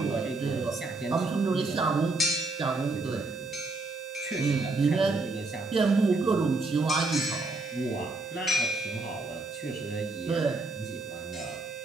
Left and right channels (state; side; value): quieter; left; 3.3 dB